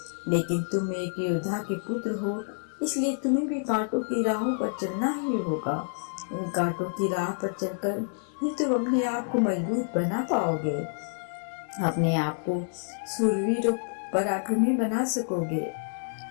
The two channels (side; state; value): right; silent; digital silence